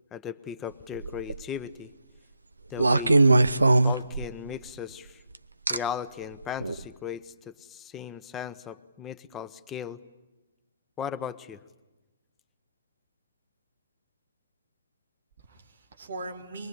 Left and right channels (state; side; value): inverted; both; correlation -0.81